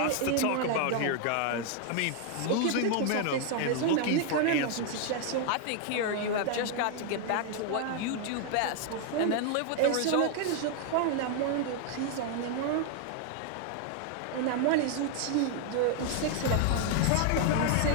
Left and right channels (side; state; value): both; different; correlation 0.00